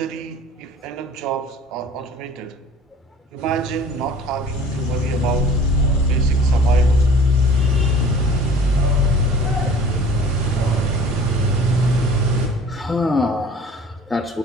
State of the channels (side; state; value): both; normal; correlation 0.47